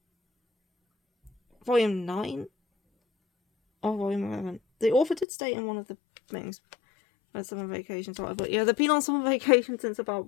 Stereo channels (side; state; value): right; drops out; at 5.2 s